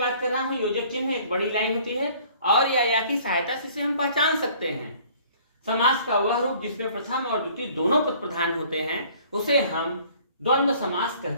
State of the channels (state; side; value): inverted; both; correlation -0.54